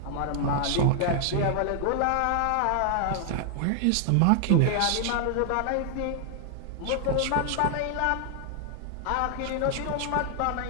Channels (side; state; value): both; different; correlation 0.00